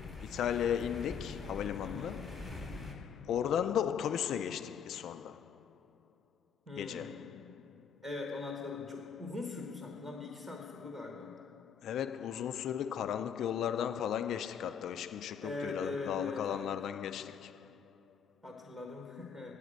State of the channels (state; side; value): quieter; right; 7.5 dB